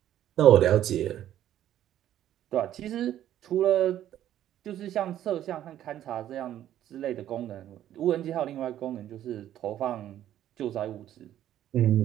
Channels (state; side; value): quieter; left; 11.8 dB